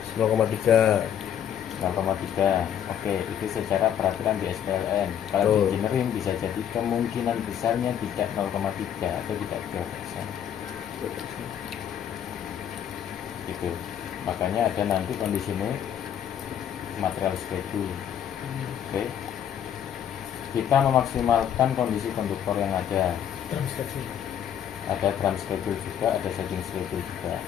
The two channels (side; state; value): right; quieter; 9.4 dB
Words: 0,3. 0,3. Oke, itu secara peraturan di SPLN. Kalau di Betul. engineering bisa jadi kemungkinan besarnya tidak 0,3 atau tidak 2%. Gitu. Makanya ada nanti kondisinya material schedule. Oke. Kita memaksimalkan kondisi konduktor yang ada. Ada drum schedule juga, ada setting schedule juga.